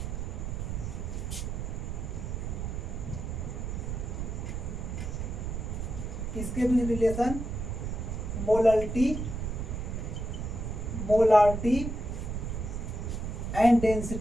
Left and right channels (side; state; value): right; noise; rumble, 4 dB below the sound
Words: किसके बीच relation, molality, molarity and